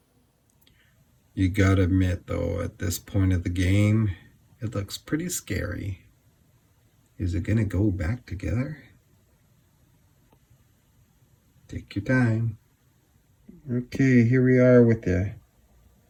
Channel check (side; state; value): both; identical; correlation 1.00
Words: You gotta admit though, at this point of the game, it looks pretty scary. Is it gonna go back together? Take your time. Okay, here we are with the